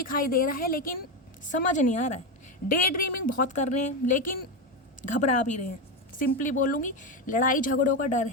दे रहा है, लेकिन समझ नहीं आ रहा है। डे ड्रीमिंग बहुत कर रहे हैं लेकिन घबरा भी रहे हैं। सिंपली बोलूँगी, लड़ाई झगड़ों का डर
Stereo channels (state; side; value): normal; both; correlation 0.12